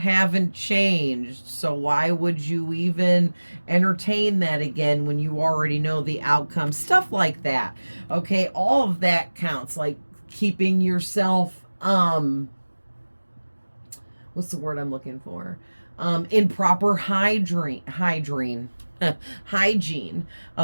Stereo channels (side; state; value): both; inverted; correlation -1.00